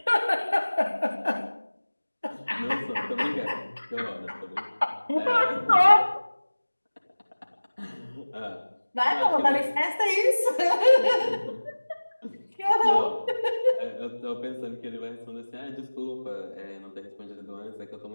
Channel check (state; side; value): inverted; both; correlation -1.00